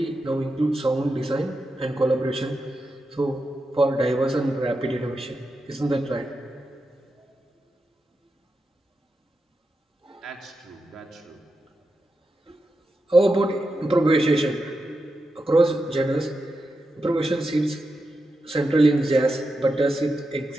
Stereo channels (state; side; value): normal; both; correlation 0.88